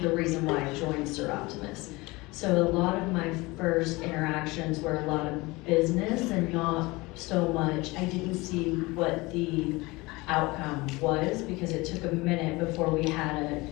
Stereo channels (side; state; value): right; quieter; 22.8 dB